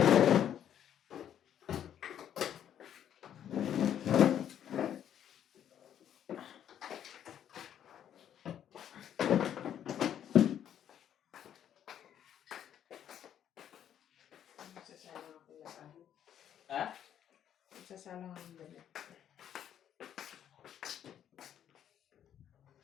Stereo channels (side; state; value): right; quieter; 9.9 dB